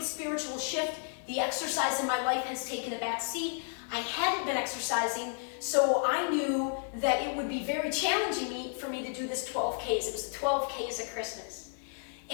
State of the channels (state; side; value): silent; right; 56 dB below the other